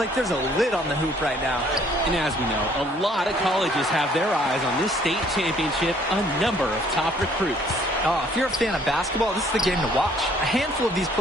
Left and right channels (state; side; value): normal; both; correlation 0.61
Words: there's a lid on the hoop right now. And as we know, a lot of colleges have their eyes on this state championship, a number of top recruits. Oh, if you're a fan of basketball, this is the game to watch. A handful of these